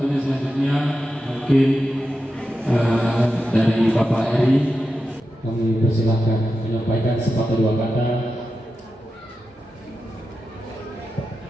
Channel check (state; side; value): normal; both; correlation 0.90